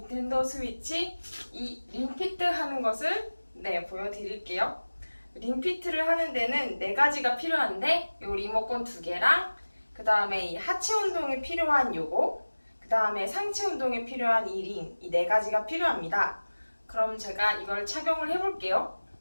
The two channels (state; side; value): inverted; both; correlation -1.00